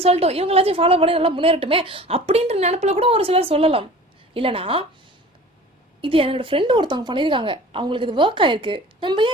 சொல்லட்டும், இவங்களாச்சும் ஃபாலோ பண்ணி நல்லா முன்னேறட்டுமே அப்படின்ற நினப்பில் கூட ஒரு சிலர் சொல்லலாம். இல்லைனா இது என்னோட ஃப்ரெண்டு ஒருத்தவங்க பண்ணியிருக்காங்க, அவங்களுக்கு இது ஒர்க் ஆயிருக்கு, நம்ம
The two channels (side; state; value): both; normal; correlation 0.43